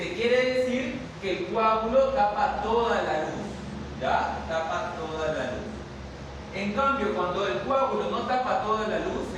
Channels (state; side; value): identical; both; correlation 1.00